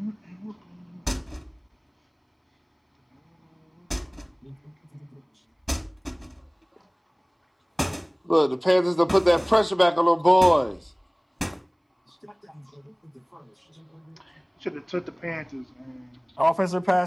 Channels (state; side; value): identical; both; correlation 1.00